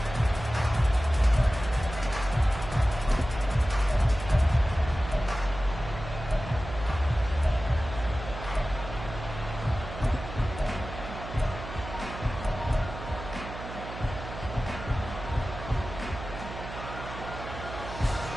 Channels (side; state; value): right; noise; hum, 10 dB below the sound